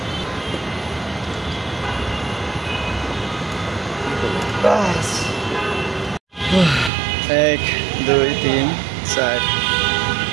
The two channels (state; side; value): drops out; left; at 6.9 s